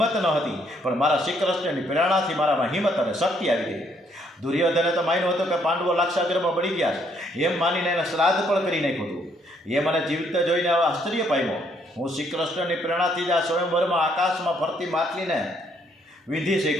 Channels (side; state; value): both; normal; correlation 0.69